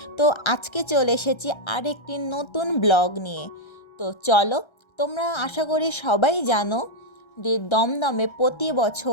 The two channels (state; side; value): late; right; 1.3 ms